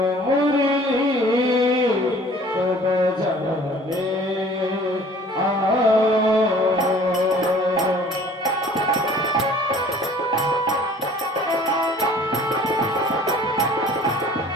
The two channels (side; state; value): both; normal; correlation 0.50